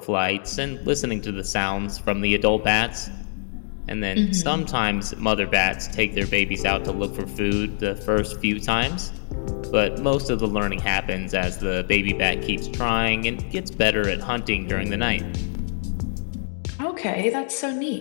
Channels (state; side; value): silent; right; digital silence